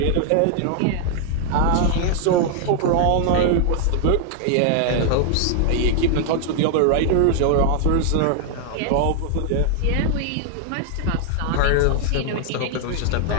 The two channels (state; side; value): different; both; correlation 0.00